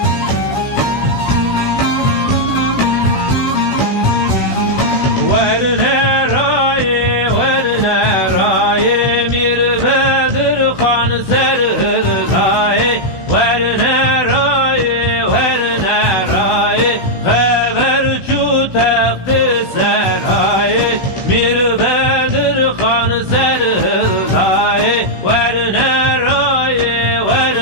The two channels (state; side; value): late; right; 16 ms